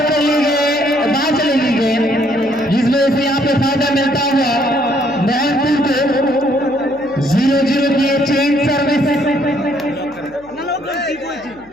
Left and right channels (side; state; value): left; noise; hum, 27 dB below the sound